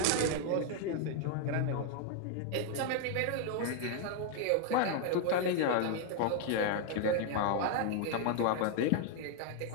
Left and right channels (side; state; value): both; different; correlation 0.00